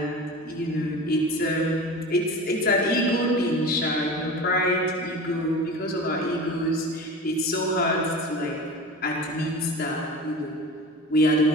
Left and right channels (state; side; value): normal; both; correlation 0.33